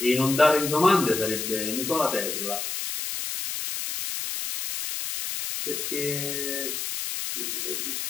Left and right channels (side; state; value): left; noise; hiss, 4 dB below the sound